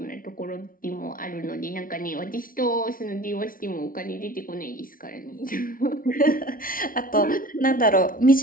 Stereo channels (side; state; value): right; late; 0.41 ms